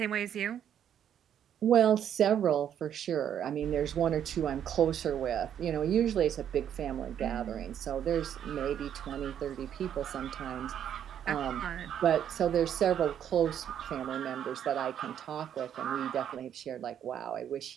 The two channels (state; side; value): quieter; left; 9.5 dB